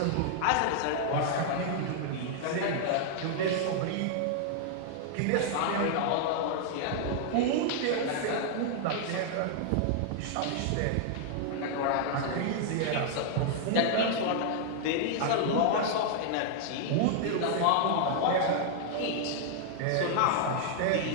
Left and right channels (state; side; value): different; both; correlation -0.01